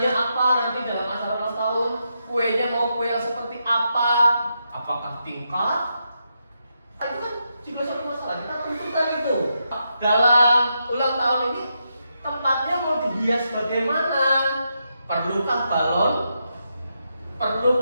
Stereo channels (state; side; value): inverted; both; correlation -0.83